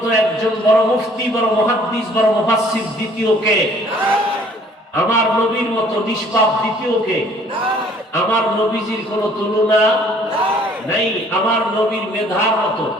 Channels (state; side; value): normal; both; correlation 0.57